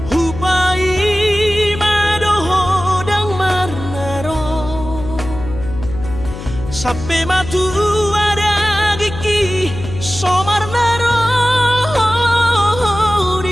hupai madoho dang marnaro sampai matu ada gigi somarnaro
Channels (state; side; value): noise; left; hum, 10 dB below the sound